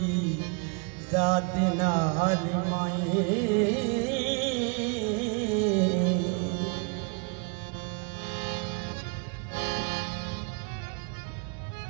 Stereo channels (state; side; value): quieter; left; 32.3 dB